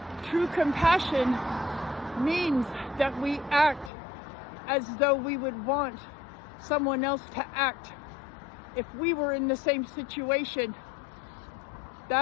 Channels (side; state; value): right; drops out; at 3.9 s